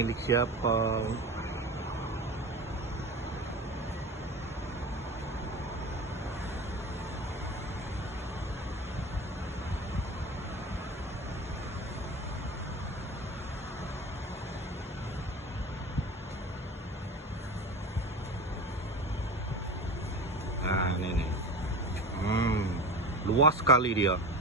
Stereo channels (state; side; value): normal; both; correlation 0.30